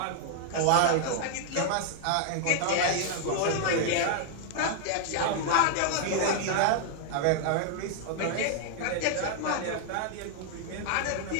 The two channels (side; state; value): both; different; correlation 0.00